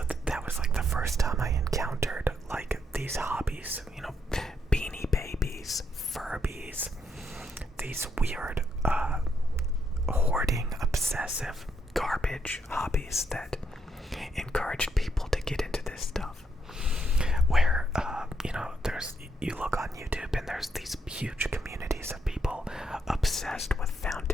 that was like the first time I encountered like these hobbies, you know, Beanie Babies, Furbies, these weird hoarding, obsessive garbage hobbies that encouraged people to get into this stuff. Where you know, you look on YouTube and there's these huge communities of people obsessed with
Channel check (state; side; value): normal; both; correlation 0.76